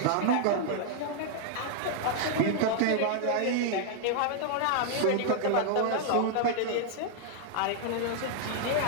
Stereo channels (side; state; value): both; different; correlation 0.00